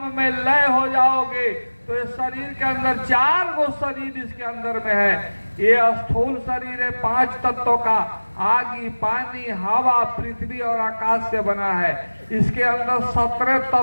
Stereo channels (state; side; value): inverted; both; correlation -1.00